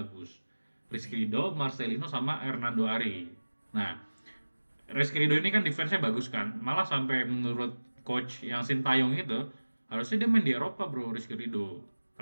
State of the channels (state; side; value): inverted; both; correlation -1.00